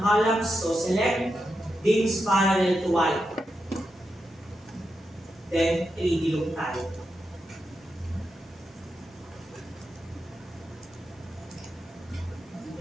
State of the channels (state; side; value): normal; both; correlation 0.87